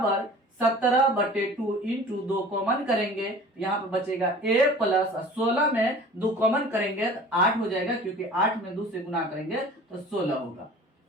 17/2 इंटू 2 कॉमन करेंगे, यहाँ पे बचेगा a प्लस 16 में 2 कॉमन करेंगे तो 8 हो जाएगा, क्योंकि 8 में 2 से गुना करेंगे तो 16 होगा।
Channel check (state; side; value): normal; both; correlation 0.43